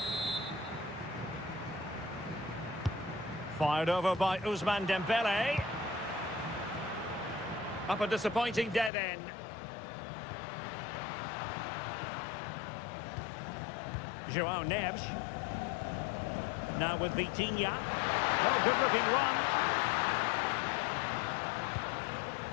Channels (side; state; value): right; drops out; at 8.9 s